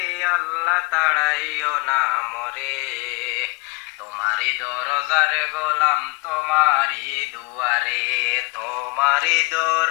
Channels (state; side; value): quieter; right; 27.6 dB